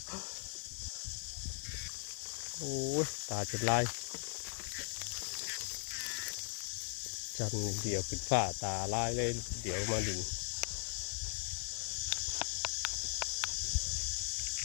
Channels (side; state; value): right; silent; digital silence